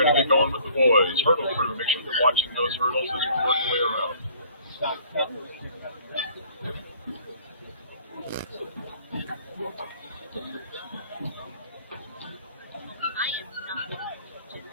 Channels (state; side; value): inverted; both; correlation -0.55